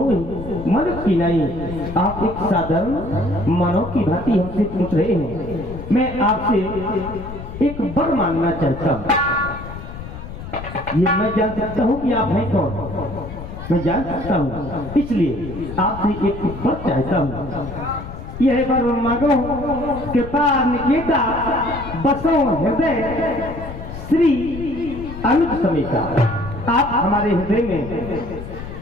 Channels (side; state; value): left; noise; rumble, 11 dB below the sound